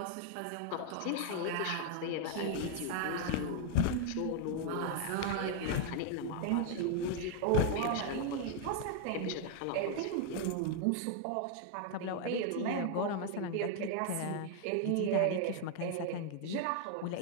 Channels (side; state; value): both; different; correlation 0.00